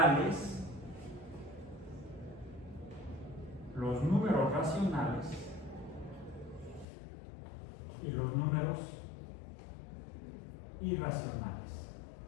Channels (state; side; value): drops out; right; at 6.9 s